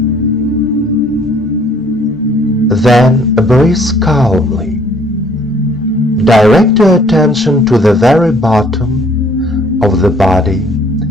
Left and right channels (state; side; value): normal; both; correlation 0.60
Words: Then breathe calmly. Direct your attention to the very bottom of the body,